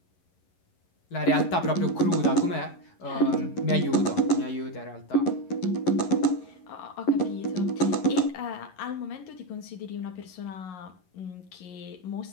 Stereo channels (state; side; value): late; right; 11 ms